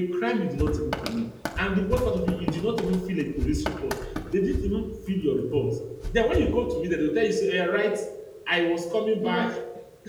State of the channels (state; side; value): identical; both; correlation 1.00